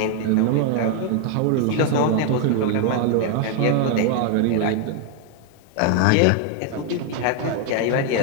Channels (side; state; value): both; different; correlation 0.00